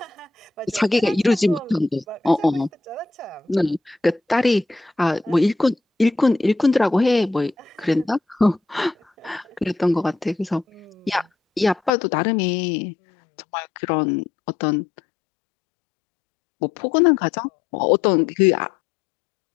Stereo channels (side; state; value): right; drops out; at 11.9 s